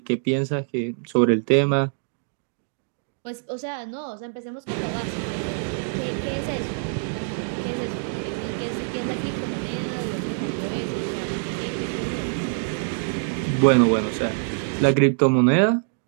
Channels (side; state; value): left; silent; digital silence